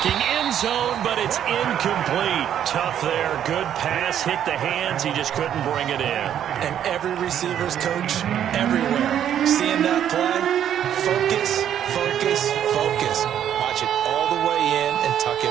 end zone, but it's incomplete. Tough there. Good pass. Hit the hands. He just couldn't bring it in. And every receiver's coach everywhere. Seeing that play, focus, focus, focus. Watch it all the way in and tuck it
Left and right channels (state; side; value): quieter; left; 10.0 dB